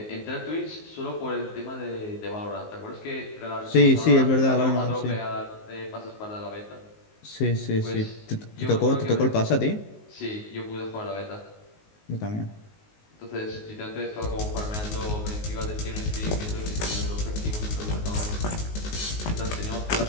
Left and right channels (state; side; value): late; right; 19 ms